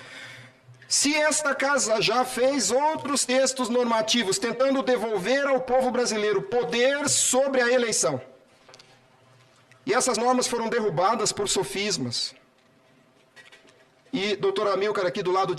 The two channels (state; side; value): identical; both; correlation 1.00